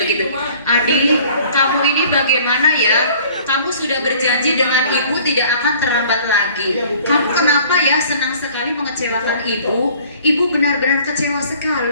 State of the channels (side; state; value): both; inverted; correlation -0.52